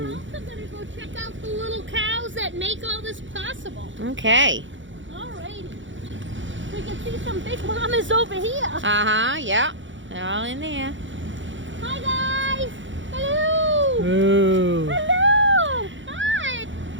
also going to go check out the little cows that make all this possible. Okay. Alrighty. We can see some big mamas over here. Uh-huh, yeah. They're all in there. Hi guys! Hello! Ooh. Hello! Hi!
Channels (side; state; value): left; late; 0.55 ms